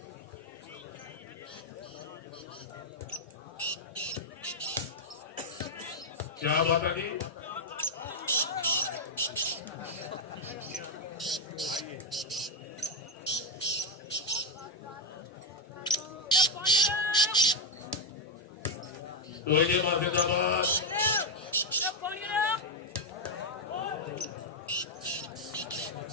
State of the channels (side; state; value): both; normal; correlation 0.02